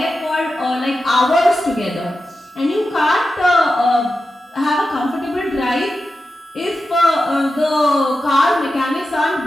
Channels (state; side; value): normal; both; correlation 0.91